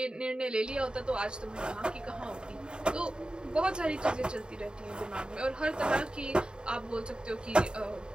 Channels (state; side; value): late; left; 0.049 ms